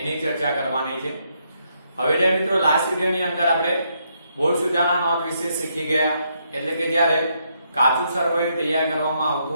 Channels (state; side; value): inverted; both; correlation -0.76